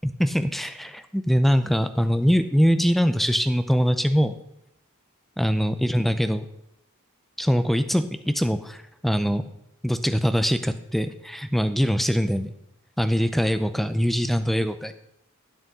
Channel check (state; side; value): normal; both; correlation 0.98